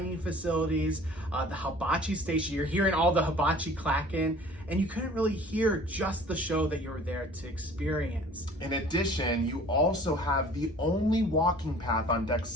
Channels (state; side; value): normal; both; correlation 0.48